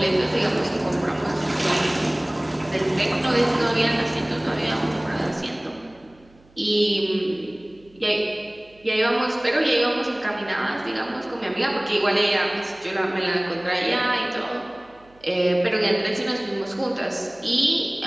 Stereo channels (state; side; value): noise; right; hum, 29 dB below the sound